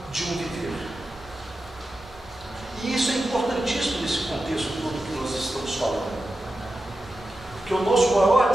de um viver. E isso é importantíssimo nesse contexto todo que nós estamos falando. Porque o nosso maior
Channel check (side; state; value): both; normal; correlation 0.91